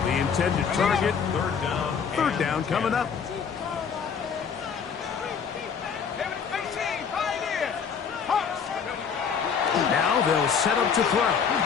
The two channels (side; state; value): right; quieter; 6.6 dB